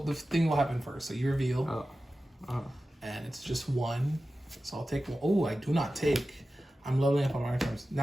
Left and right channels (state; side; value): normal; both; correlation 0.94